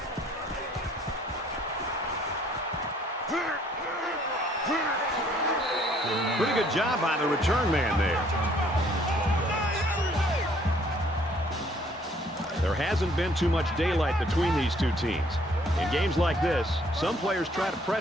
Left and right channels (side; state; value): both; normal; correlation 0.61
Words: Pretty good job by the return man there. There hasn't been too much daylight between these two teams. In games like this, some players try to